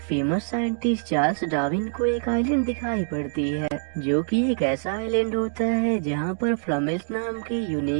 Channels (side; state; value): left; silent; digital silence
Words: फेमस साइंटिस्ट चार्ल्स डार्विन को एक आइलैंड दिखाई पड़ती है, जो कि एक ऐसा आइलैंड होता है जहां पर फ्लमेल्स नाम के